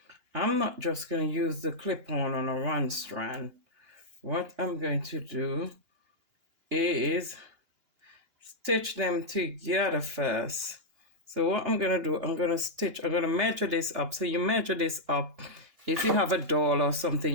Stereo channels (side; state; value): left; late; 2.9 ms